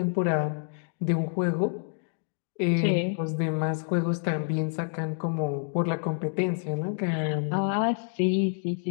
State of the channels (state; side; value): silent; right; digital silence